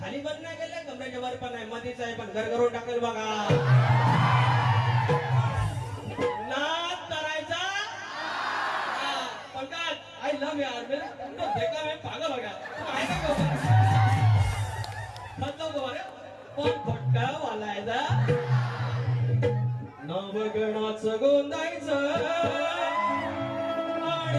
खाली पण नाही गेले, कमरेच्या वर पण नाही, मध्येच आहे, पण घर करून टाकेल बघा. नाद करायचा पंकज, आय लव्ह यार, देखा मैं पागल हो गया. पण खोटा बोलायचा, नवगणाचं गोंदायचं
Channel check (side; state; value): both; identical; correlation 1.00